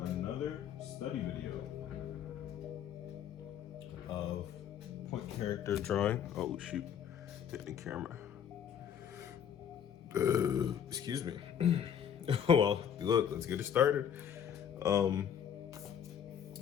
another study video of point character drawing. Oh shoot, hit the camera. Excuse me. Well, look, let's get it started. I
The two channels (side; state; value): right; quieter; 8.8 dB